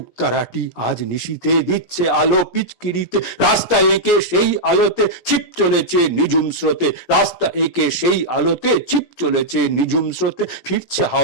আজ নিশীতে দিচ্ছে আলো পিচকিরিতে। রাস্তা এঁকে সেই আলোতে ছিপ চলেছে নিঝুম স্রোতে, রাস্তা এঁকে সেই আলোতে ছিপ চলেছে নিঝুম স্রোতে। ফিরছে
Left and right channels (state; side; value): late; right; 17 ms